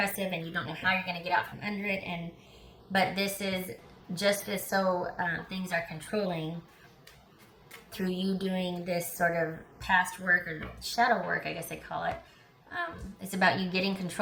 and you don't know how you're going to get out from under it. But this is just as so things are controlling through you doing this sort of past work or shadow work, I guess they call it. It's about you getting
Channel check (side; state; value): both; identical; correlation 1.00